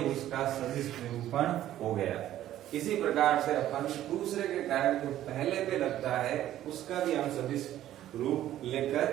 उसका सदिश निरूपण हो गया। इसी प्रकार से अपन दूसरे के कारण जो पहले पे लगता है उसका भी हम सदिश रूप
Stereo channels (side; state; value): left; quieter; 12.8 dB